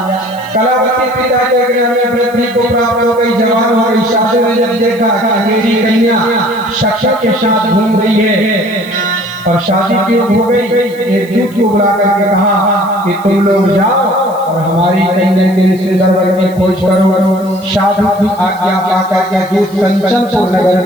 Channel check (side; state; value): left; noise; hiss, 23 dB below the sound